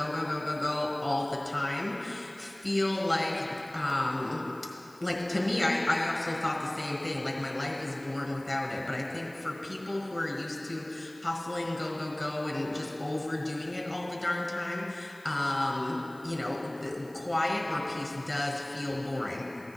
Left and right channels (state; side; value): noise; right; hiss, 25 dB below the sound